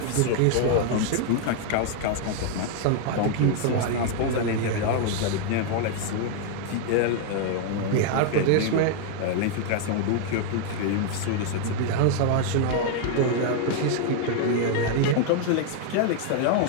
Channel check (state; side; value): different; both; correlation 0.00